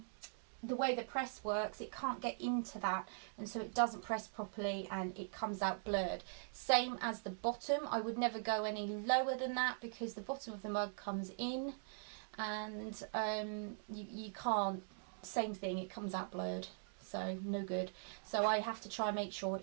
the way the press works. It can't get into that, and so it doesn't press properly and it comes out blurred. Same as the bottom, I would never go any lower than that because the bottom of the mug comes in and you can't, same thing, it comes out blurred, so no good. So I have to try and make sure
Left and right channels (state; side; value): silent; left; digital silence